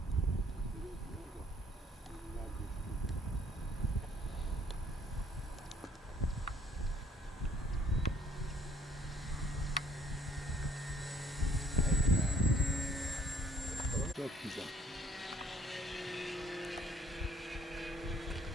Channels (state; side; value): normal; both; correlation 0.63